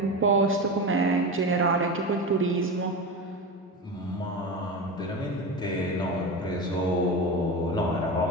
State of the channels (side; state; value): both; normal; correlation 0.23